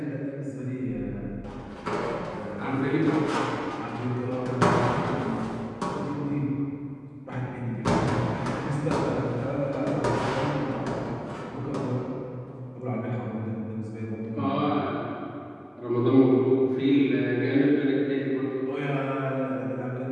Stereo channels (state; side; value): identical; both; correlation 1.00